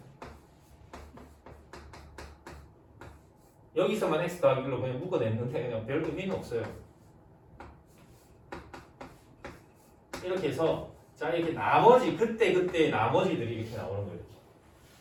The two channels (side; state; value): both; identical; correlation 1.00